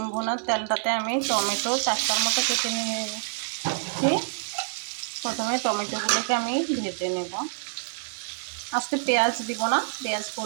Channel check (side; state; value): left; silent; digital silence